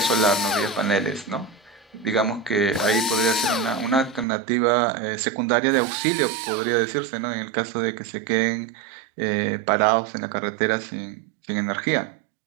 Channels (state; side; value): drops out; left; at 4.2 s